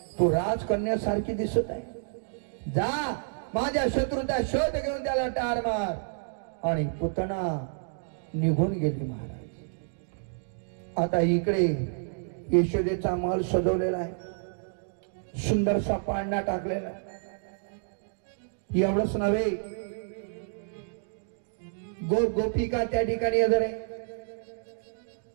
तू राजकन्यासारखी दिसत आहे. जा माझ्या शत्रूचा शोध घेऊन त्याला ठार मार. आणि पुतना निघून गेली महाराज. आता इकडे यशोदेचा महल सजवलेला आहे, सुंदरसा पाळणा टाकलेला. एवढंच नव्हे, गोपिका त्या ठिकाणी हजर आहे.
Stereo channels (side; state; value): left; silent; digital silence